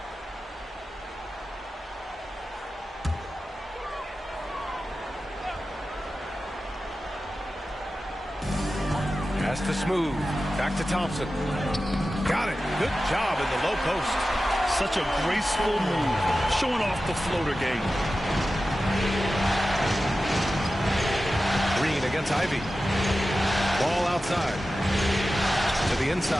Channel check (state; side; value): normal; both; correlation 0.94